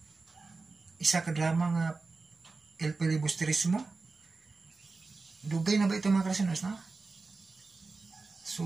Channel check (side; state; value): left; quieter; 3.9 dB